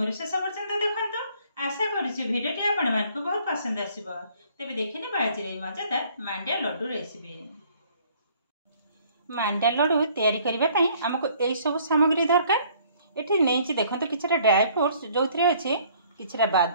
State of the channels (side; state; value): both; inverted; correlation -0.59